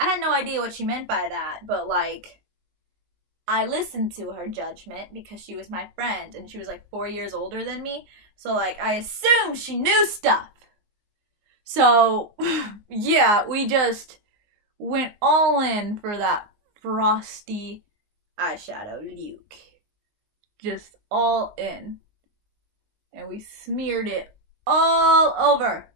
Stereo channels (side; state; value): left; late; 19 ms